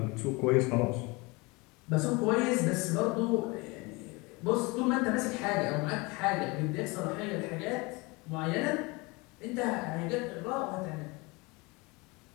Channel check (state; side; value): quieter; right; 25.9 dB